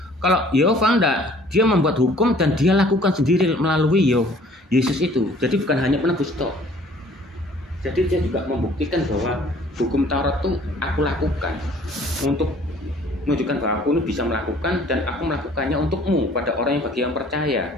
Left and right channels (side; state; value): both; normal; correlation 0.54